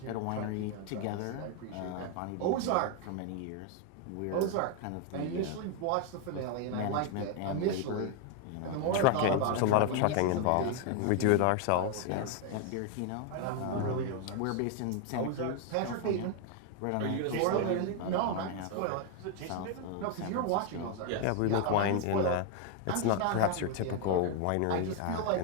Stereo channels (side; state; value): both; different; correlation 0.00